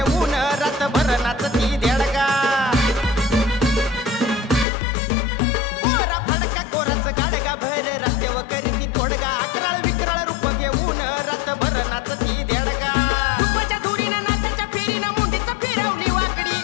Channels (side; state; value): right; drops out; at 4.7 s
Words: रातभर नाचती देडगा भर रस्त्यावर करीती तोडगा अकराळ विकराळ रूप घेऊन रातभर नाचती देडगा तुपाच्या धुरीनं नाचाच्या फेरीनं मुंडीचं फिरवली वाकडी